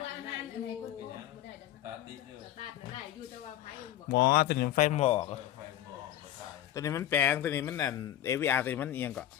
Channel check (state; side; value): quieter; right; 12.3 dB